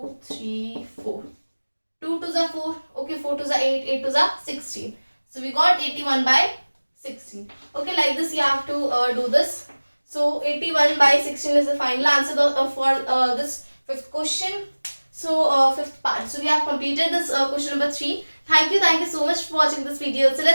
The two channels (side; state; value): both; inverted; correlation -1.00